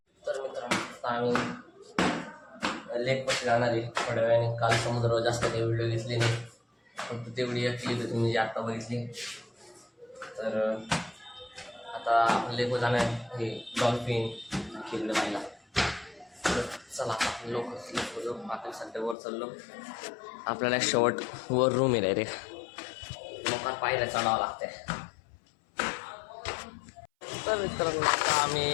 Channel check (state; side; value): drops out; right; at 19.2 s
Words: तर मित्रांनो आम्ही लेक पाशी जाणार आहे थोड्या वेळाने. काल समुद्रावर जास्त काही व्हिडिओ घेतली नाही, फक्त तेवढी एक क्लिप तुम्ही जी आत्ता बघितली. तर आता आपण लेकवर जाणार हे डॉल्फिन खेळलं पाहिला. तर चला आपण लोक आपण सध्या वर चाललो. आपल्याला शेवट वर रूम आहे रे, लोकांना पाहिलं चढावं लागतंय. तर मित्रांनो आता